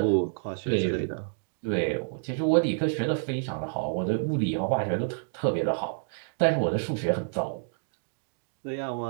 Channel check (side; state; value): left; silent; digital silence